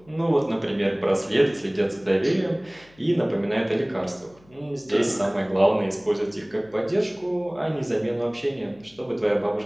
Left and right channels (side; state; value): left; noise; hum, 29 dB below the sound